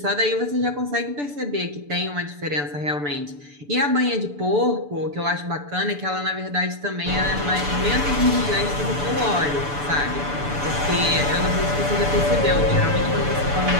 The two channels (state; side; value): late; left; 6.9 ms